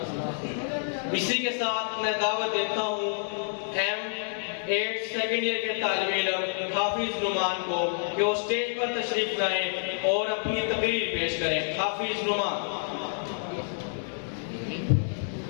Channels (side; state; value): right; silent; digital silence